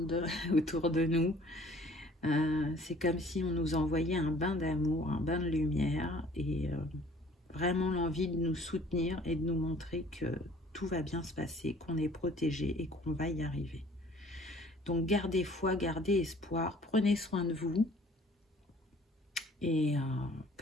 autour de nous. C'est comme si on nous envoyait un bain d'amour, un bain de lumière et vraiment l'envie de nous soutenir et de nous montrer que tout va bien se passer, qu'on est protégé et qu'on va y arriver. Donc gardez foi, gardez espoir, prenez soin de vous. Et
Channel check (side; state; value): both; normal; correlation 0.54